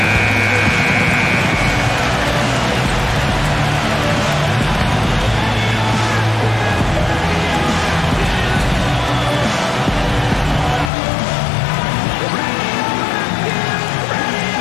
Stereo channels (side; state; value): right; drops out; at 10.9 s